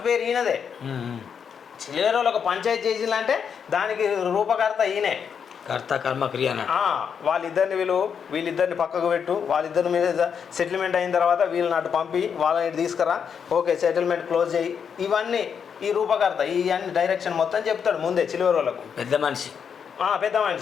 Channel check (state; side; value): quieter; right; 7.1 dB